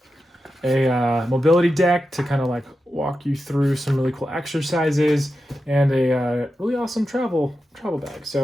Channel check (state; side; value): normal; both; correlation 0.90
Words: a mobility deck to kind of like walk you through some really cool exercises, and a really awesome travel bag.